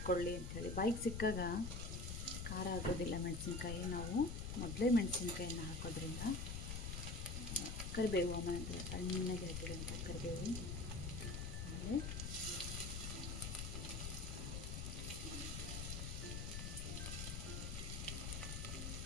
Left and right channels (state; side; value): noise; left; rumble, 4 dB below the sound